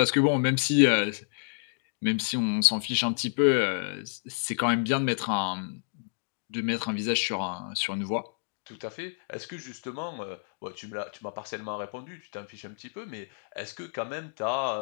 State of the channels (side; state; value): right; silent; digital silence